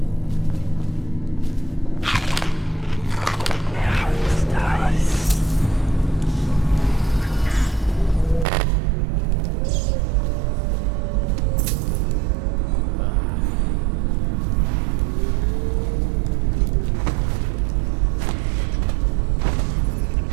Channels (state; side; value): drops out; left; at 8.5 s